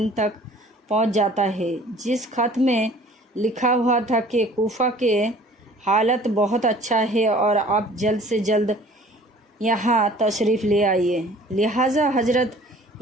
تک پہنچ جاتا ہے، جس خط میں لکھا ہوا تھا کہ کوفہ کے حالت بہت اچھا ہے اور آپ جلد سے جلد یہاں تشریف لے آئیے۔ لہٰذا حضرت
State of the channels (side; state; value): both; normal; correlation 0.50